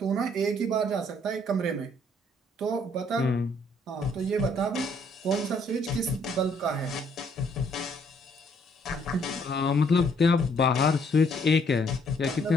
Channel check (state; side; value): normal; both; correlation 0.66